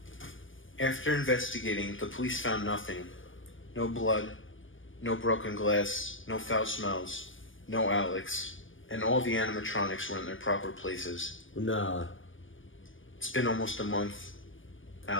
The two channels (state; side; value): late; right; 0.57 ms